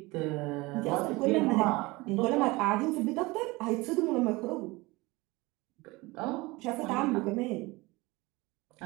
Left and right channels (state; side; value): quieter; left; 22.5 dB